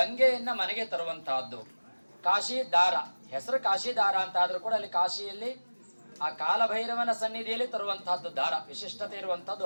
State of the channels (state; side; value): inverted; both; correlation -1.00